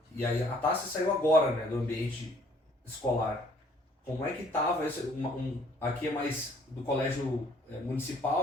aí a Tássia saiu agora, né, do ambiente escolar. Como é que estava esse, aqui é mais do colégio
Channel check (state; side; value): normal; both; correlation 0.59